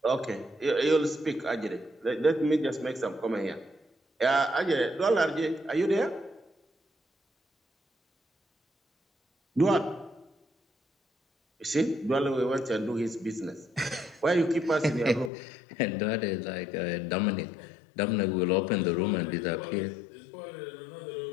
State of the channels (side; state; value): right; drops out; at 15.3 s